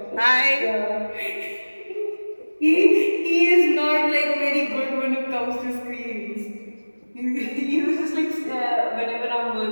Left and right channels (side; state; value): both; inverted; correlation -1.00